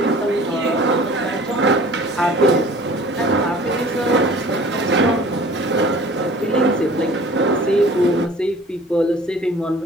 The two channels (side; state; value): both; normal; correlation 0.47